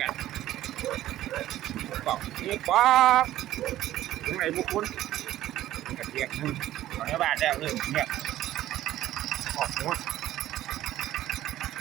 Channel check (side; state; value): left; quieter; 13.9 dB